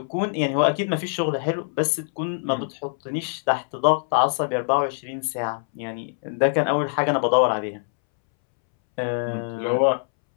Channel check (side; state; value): right; silent; 63 dB below the other